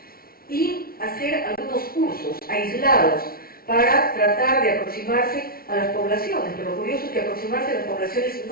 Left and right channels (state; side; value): late; right; 0.43 ms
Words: y hacer algunos cursos aislados para tratar de aproximarse a las poblaciones, pero lo curioso es que aproximarse a las poblaciones